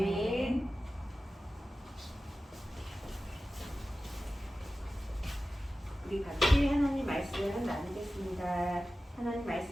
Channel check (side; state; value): both; normal; correlation 0.95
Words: 우리 같이 하나님 말씀 나누겠습니다. 하나님